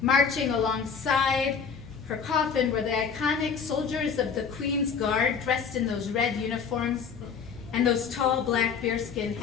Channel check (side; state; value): right; quieter; 6.3 dB